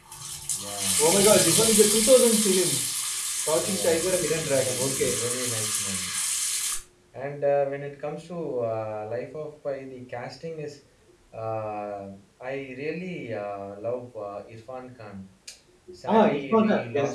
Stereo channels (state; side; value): identical; both; correlation 1.00